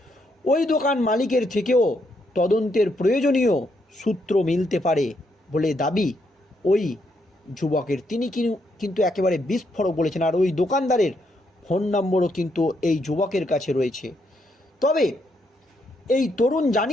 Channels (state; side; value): normal; both; correlation 0.77